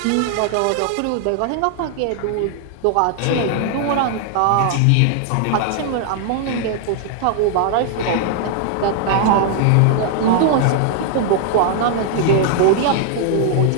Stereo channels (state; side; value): different; both; correlation 0.00